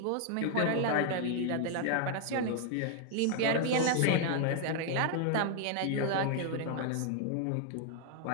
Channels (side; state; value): both; different; correlation 0.00